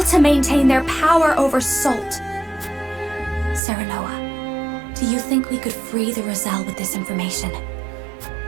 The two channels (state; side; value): drops out; left; at 3.6 s